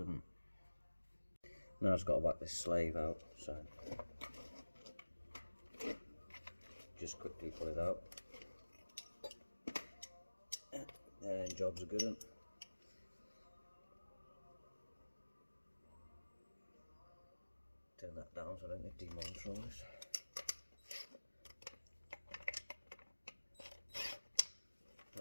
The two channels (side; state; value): both; inverted; correlation -1.00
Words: one. Now I've just got to whack this slave out, so just quickly pull it out. And job's a good one. Turn that down so I don't get demonetized.